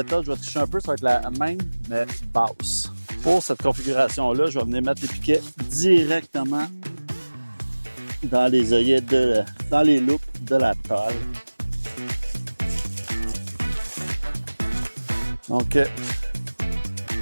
je vais tricher un peu, ça va être la même, mais basse. Pour cette configuration-là, je vais venir mettre les piquets directement dans les œillets dans les loupes de la toile. Donc,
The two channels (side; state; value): both; inverted; correlation -1.00